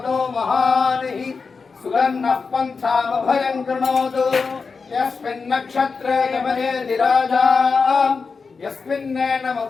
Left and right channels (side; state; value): right; quieter; 4.8 dB